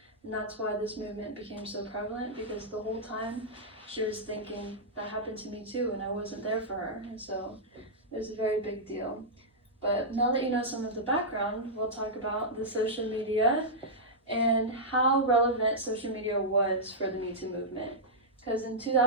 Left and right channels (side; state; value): both; normal; correlation -0.10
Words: And that's why this movement became so prevalent, because the whole time she was thinking, that happened to me too, and I wasn't there for her. And so it was a very big deal. But now that you know some of the background, we'll talk about the social media and how relevant social media was for the Me Too movement. Because in